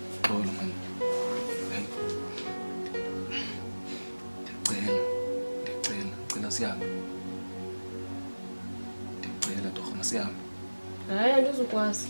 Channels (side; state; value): both; inverted; correlation -1.00